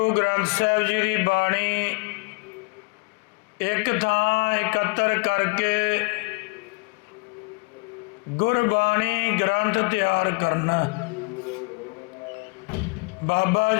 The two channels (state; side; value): quieter; right; 28.8 dB